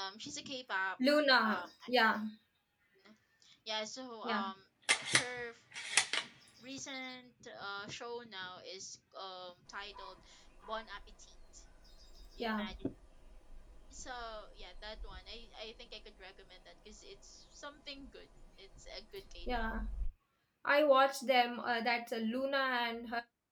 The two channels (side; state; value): both; identical; correlation 1.00